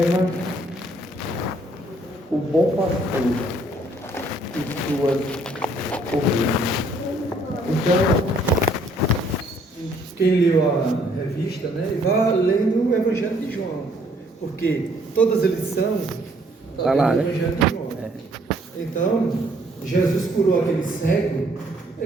o bom pastor e suas ovelhas. Então, quem leu a revista, né, vá lendo o Evangelho de João, porque todas as lições estão lá, no né? Evangelho de João. Então, Jesus curou aquele cego,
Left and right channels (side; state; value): both; normal; correlation 0.64